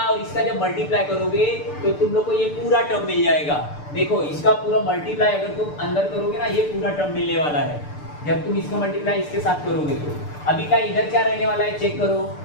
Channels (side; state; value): right; late; 6.8 ms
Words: और इसका जब मल्टीप्लाई करोगे तो तुम लोग को ये पूरा टर्म मिल जाएगा। देखो इसका पूरा मल्टीप्लाई अगर तुम अंदर करोगे ना, ये पूरा टर्म मिलने वाला है जब तुम इसका मल्टीप्लाई इसके साथ करोगे। तो अभी का इधर क्या रहने वाला है चेक करो,